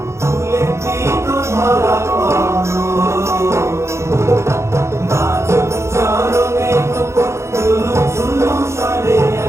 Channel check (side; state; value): left; late; 0.13 ms